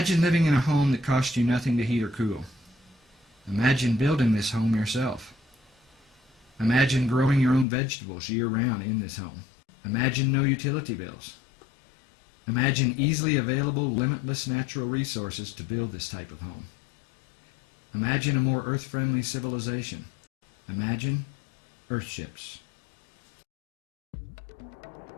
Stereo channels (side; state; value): right; drops out; at 7.7 s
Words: living in a home that costs you nothing to heat or cool. Imagine building this home yourself. Imagine growing your own vegetables year-round in this home. Imagine no utility bills. Imagine easily available, limitless natural resources to build this type of home. Imagine a more earth-friendly civilization. Imagine Earthships.